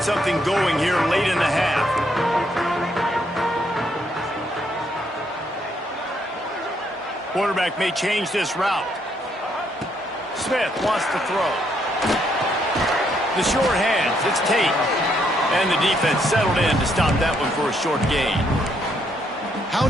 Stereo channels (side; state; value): both; normal; correlation 0.73